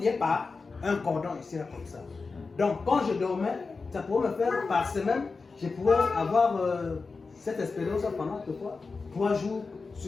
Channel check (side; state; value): right; quieter; 4.3 dB